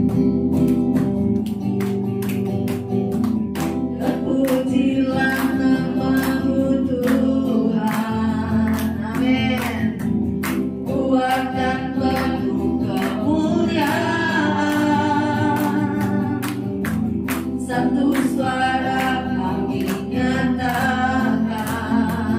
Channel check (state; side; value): identical; both; correlation 1.00